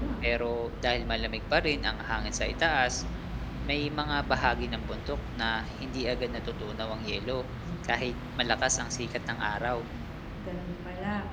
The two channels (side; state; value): both; identical; correlation 1.00